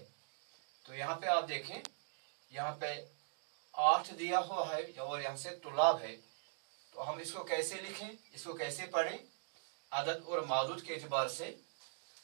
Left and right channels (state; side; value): silent; left; digital silence